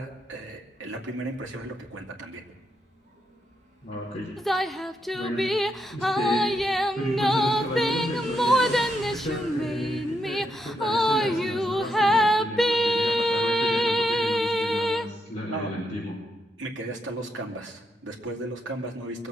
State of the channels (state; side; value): normal; both; correlation 0.80